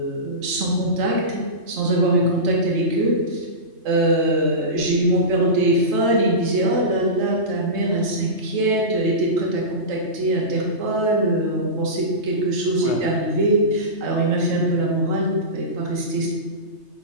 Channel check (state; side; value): late; left; 3.3 ms